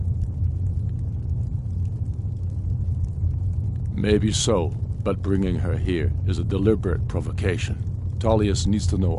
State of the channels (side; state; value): both; identical; correlation 1.00